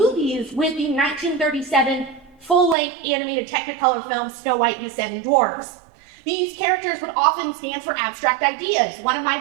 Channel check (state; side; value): drops out; left; at 2.8 s